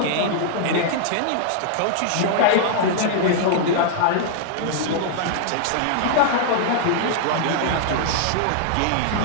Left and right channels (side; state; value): both; different; correlation -0.01